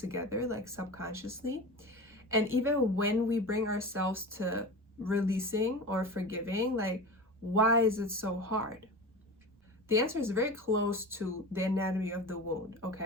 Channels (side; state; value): both; normal; correlation 0.30